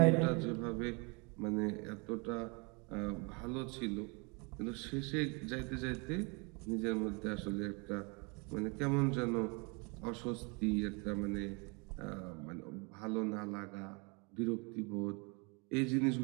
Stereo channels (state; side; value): quieter; left; 31.7 dB